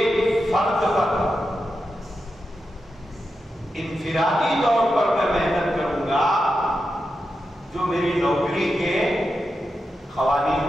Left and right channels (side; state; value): both; normal; correlation 0.88